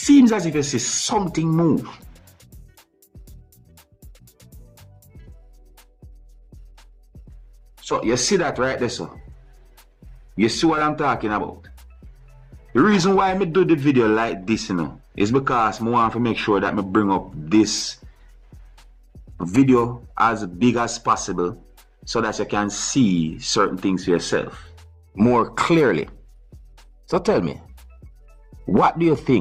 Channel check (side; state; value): both; identical; correlation 1.00